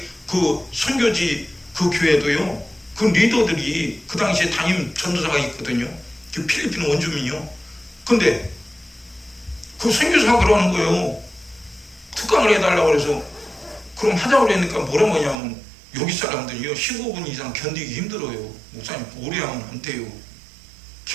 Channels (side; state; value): left; drops out; at 15.4 s